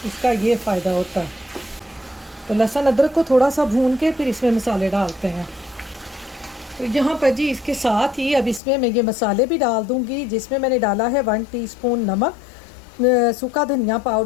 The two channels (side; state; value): right; drops out; at 8.6 s